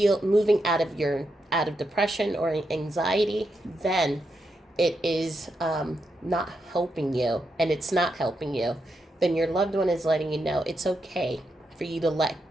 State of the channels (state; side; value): normal; both; correlation 0.84